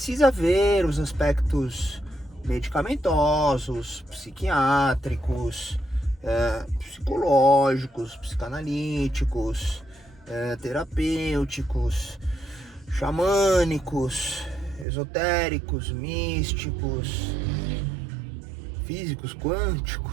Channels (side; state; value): left; drops out; at 14.9 s